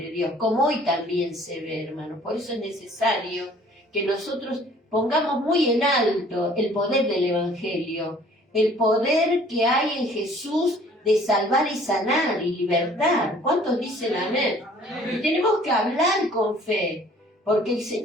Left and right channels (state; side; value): normal; both; correlation 0.54